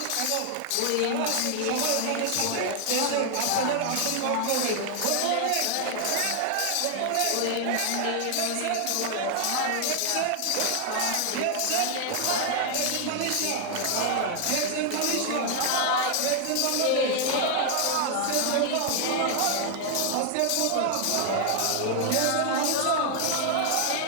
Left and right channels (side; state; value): both; different; correlation 0.00